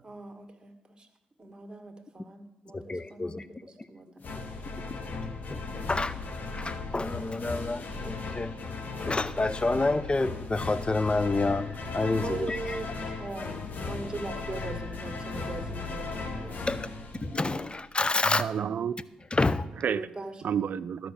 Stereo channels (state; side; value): normal; both; correlation 0.79